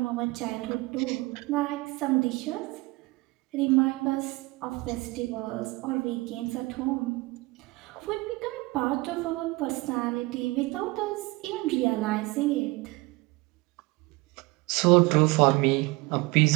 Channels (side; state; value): left; quieter; 23.0 dB